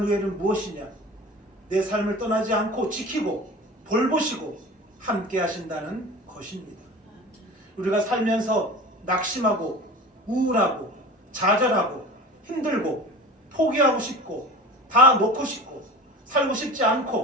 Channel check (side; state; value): both; normal; correlation 0.36